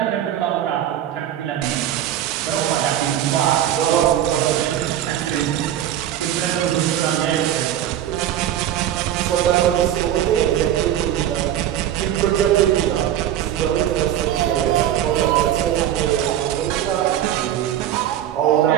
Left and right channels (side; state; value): left; quieter; 11.4 dB